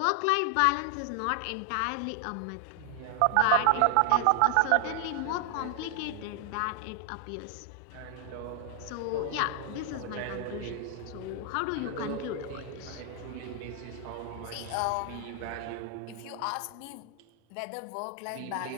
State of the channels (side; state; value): both; different; correlation 0.00